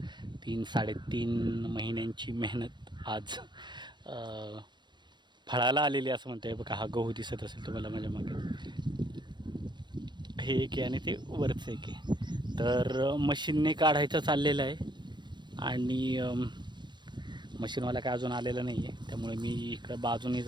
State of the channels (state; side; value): late; left; 0.22 ms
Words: 3-3.5 महिन्यांची मेहनत आज फळाला आलेली असं म्हणते. बघा, हा गहू दिसत असेल तुम्हाला माझ्या मागे. हे एक आहे आणि ते वरचं एक आहे. तर मशीनने काढायचं चाललेलं आहे आणि मशीनवाला काय अजून आलेला नाही आहे. त्यामुळे मी इकडं बाजूने